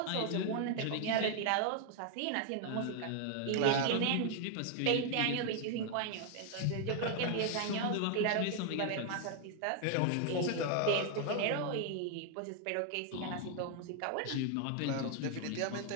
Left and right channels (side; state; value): both; different; correlation 0.00